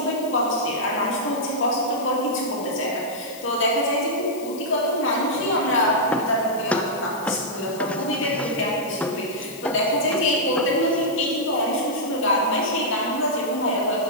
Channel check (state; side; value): noise; left; hiss, 17 dB below the sound